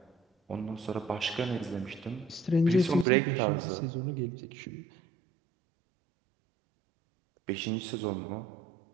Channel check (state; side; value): drops out; left; at 3.1 s